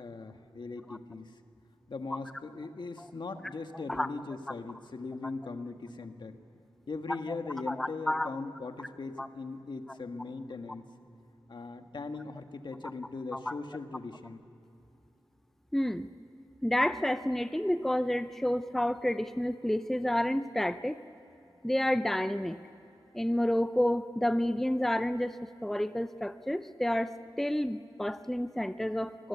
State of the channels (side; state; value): both; normal; correlation 0.97